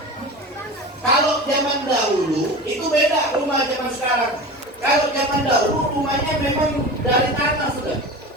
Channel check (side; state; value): both; normal; correlation 0.31